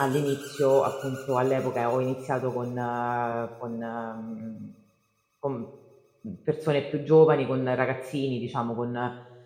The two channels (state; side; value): identical; both; correlation 1.00